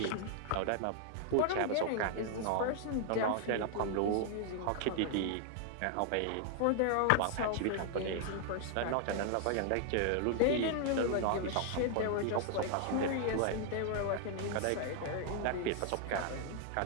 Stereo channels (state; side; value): different; both; correlation 0.00